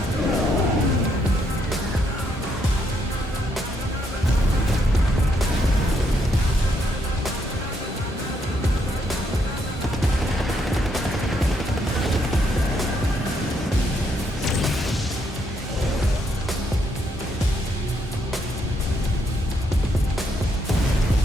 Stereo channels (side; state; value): both; normal; correlation 0.75